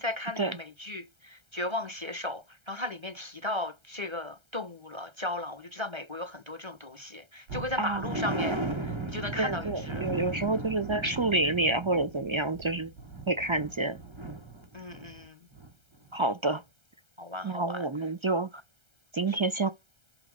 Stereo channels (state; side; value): late; left; 1.3 ms